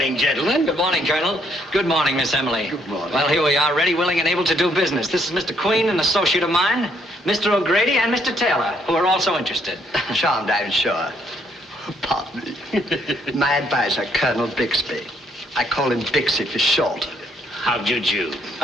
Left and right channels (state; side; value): normal; both; correlation 0.70